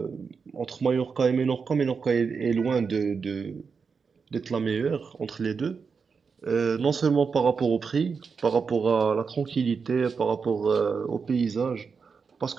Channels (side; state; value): left; quieter; 5.5 dB